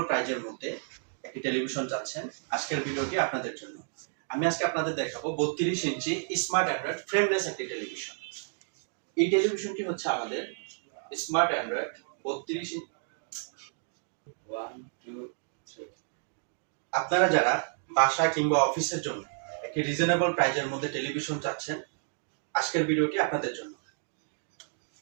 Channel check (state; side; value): silent; left; digital silence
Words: প্রাইজের মধ্যে একটি টেলিভিশন চাচ্ছেন, আজকের ভিডিওটি আপনাদের জন্য। আমি আজকে আপনাদের দেখাবো 32 ইঞ্চি স্মার্ট অ্যান্ড্রয়েড ফ্রেমলেস একটি টেলিভিশন। এই টেলিভিশনটি হচ্ছে আমাদের স্মার্ট অ্যান্ড্রয়েড 32 ইঞ্চি। আপনারা যারা বাসা কিংবা অফিসের জন্য একটি রিজনেবল প্রাইজের মধ্যে টেলিভিশন চাচ্ছেন, আজকের ভিডিওটি আপনাদের জন্য।